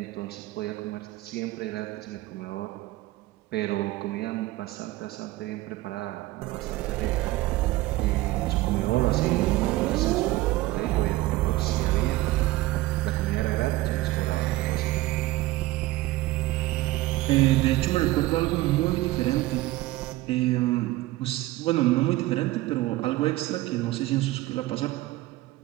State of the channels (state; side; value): quieter; left; 18.2 dB